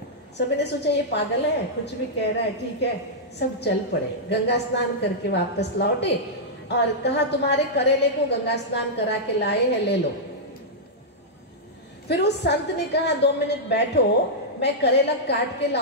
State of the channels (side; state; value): both; normal; correlation -0.09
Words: सभी ने सोचा ये पागल है, कुछ भी कह रहा है, ठीक है। सब चल पड़े, गंगा स्नान करके वापस लौटे और कहा तुम्हारे करेले को गंगा स्नान करा के लाए हैं, ले लो। फिर उस संत ने कहा 2 मिनट बैठो, मैं करेला काट के